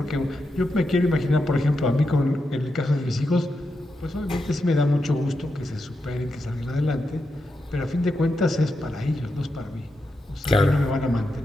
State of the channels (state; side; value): normal; both; correlation 0.86